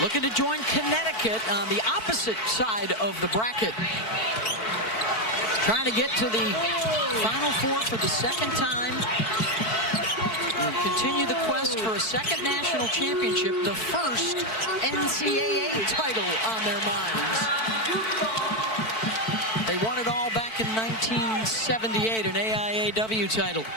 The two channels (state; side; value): late; right; 4.5 ms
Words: Looking to join Connecticut on the opposite side of the bracket. Trying to get to the Final Four for the second time. And continue the quest for a second national championship, the first NCAA title on their minds. They won it all back in 1978, an AIAW title.